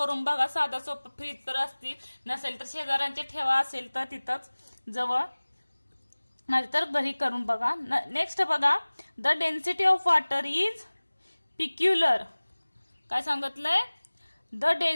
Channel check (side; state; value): both; inverted; correlation -1.00